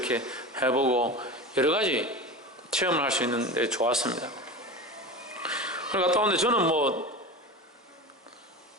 해보고 여러 가지 체험을 할 수 있는데 좋았습니다. 그걸 갔다 오는데 저는 뭐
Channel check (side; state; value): both; normal; correlation 0.29